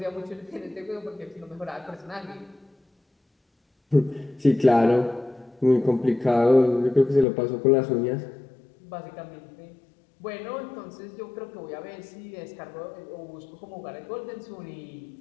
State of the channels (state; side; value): drops out; right; at 7.2 s